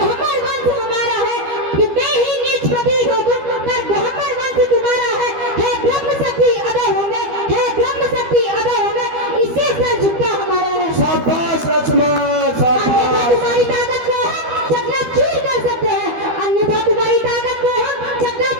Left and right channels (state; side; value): late; left; 12 ms